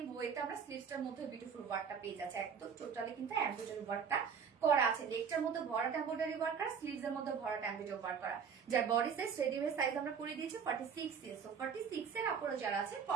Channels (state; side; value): quieter; left; 6.7 dB